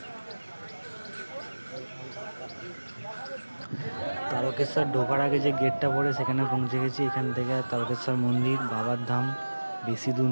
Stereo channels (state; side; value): inverted; both; correlation -1.00